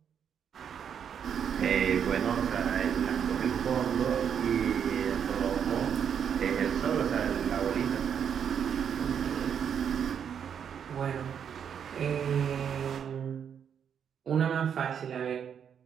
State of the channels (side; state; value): left; quieter; 8.0 dB